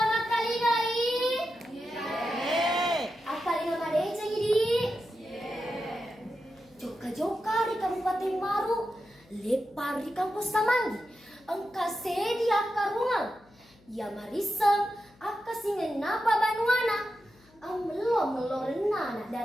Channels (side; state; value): left; noise; hum, 29 dB below the sound